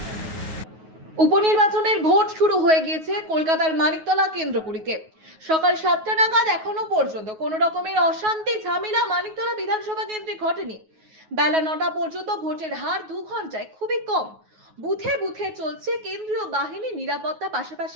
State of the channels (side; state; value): left; late; 9.4 ms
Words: উপনির্বাচনের ভোট শুরু হয়ে গিয়েছে কলকাতার মানিকতলা কেন্দ্রগুলিতে। সকাল 7টা নাগাদ এখনো পর্যন্ত কোনো রকমের অশান্তি ঝামেলা মানিকতলা বিধানসভা কেন্দ্রে ঘটেনি। বেলা 9টা পর্যন্ত ভোটের হার 2 ঘন্টায় খুবই কম। বুথে বুথে চলছে কেন্দ্রীয় বাহিনী নিরাপত্তা,